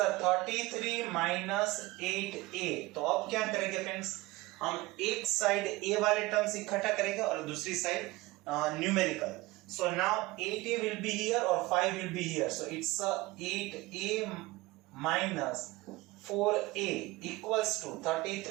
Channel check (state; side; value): quieter; left; 20.7 dB